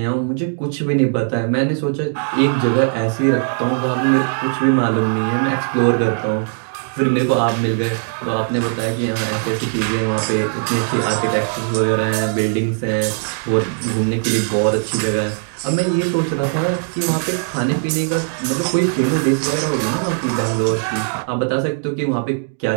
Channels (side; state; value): left; silent; 65 dB below the other